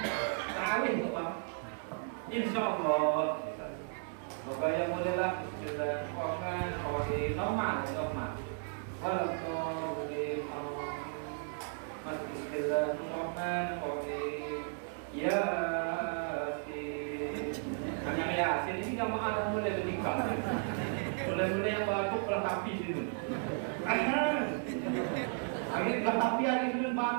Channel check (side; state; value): left; silent; 55 dB below the other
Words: terawih tuh bang. Insya Allah. Maka yang mulailah Bismillahirrahmanirrahim. Normal. Walaqur'an Allah. Masuk Bismillahirrahmanirrahim. Yasin. Agak Yasin ini jamaah dah mulai bernikah. Mulai yang batuk pelatapi situ. Akhirnya pelatapi ada situ